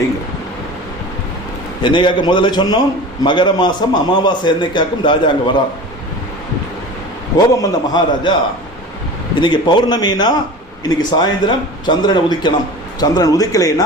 என்னைக்காக்க முதல்ல சொன்னோம், மகர மாதம் அமாவாசை என்னைக்காக்கும் ராஜா அங்கே வரார். கோபம் வந்த மகாராஜா, இன்னைக்கு பௌர்ணமினா இன்னைக்கு சாயந்தரம் சந்திரனை உதிக்கணும், சந்திரன்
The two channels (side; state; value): both; normal; correlation 0.35